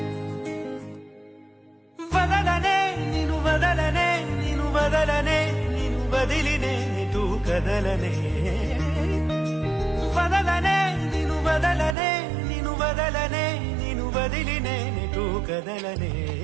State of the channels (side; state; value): left; drops out; at 12.0 s